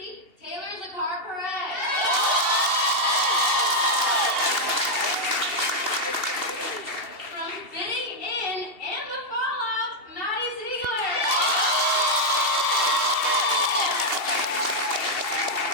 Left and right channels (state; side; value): late; right; 2.7 ms